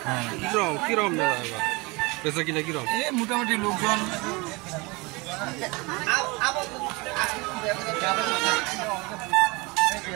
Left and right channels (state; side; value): quieter; left; 25.8 dB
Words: হ্যাঁ। কিরকম মেলা এবার বেচা কিনা কিরকম? এই মোটামুটি লোকজন